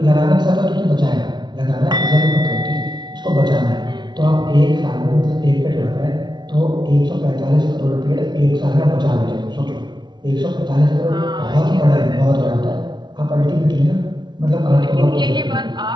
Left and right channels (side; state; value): left; late; 0.21 ms